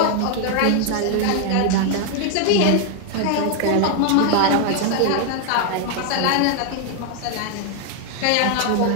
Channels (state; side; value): different; both; correlation 0.00